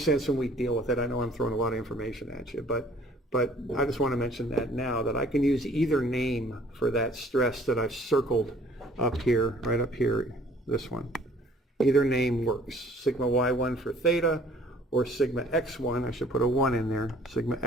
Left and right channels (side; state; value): both; normal; correlation 0.56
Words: when we deal with it. I know I'm throwing a lot of information at you, but I just want to mention that now, that I can use either name for that stress that I've circled up here, right up here, this one. Either name works. Sigma y1 for theta, or sigma x1, I should put a 1 in there, sigma